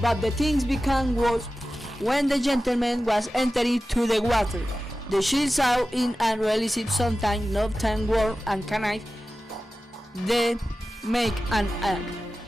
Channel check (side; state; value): both; normal; correlation 0.95